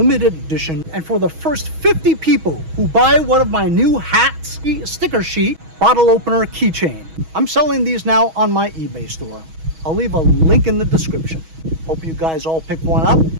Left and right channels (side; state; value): left; late; 6.2 ms